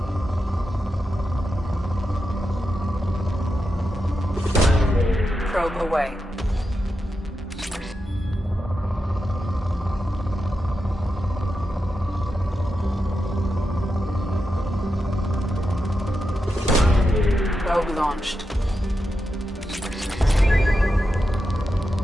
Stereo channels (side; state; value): both; normal; correlation 0.88